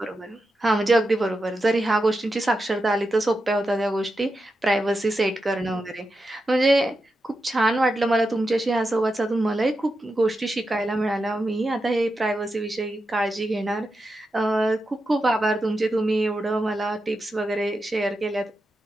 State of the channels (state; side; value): normal; both; correlation 0.88